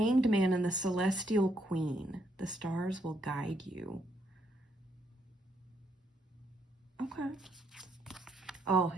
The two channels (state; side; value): normal; both; correlation 0.74